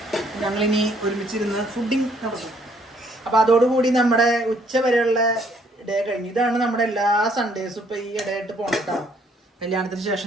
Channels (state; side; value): normal; both; correlation 0.65